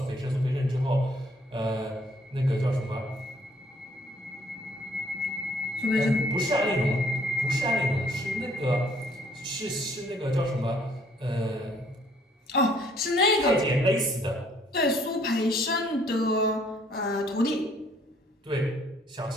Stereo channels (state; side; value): normal; both; correlation 0.63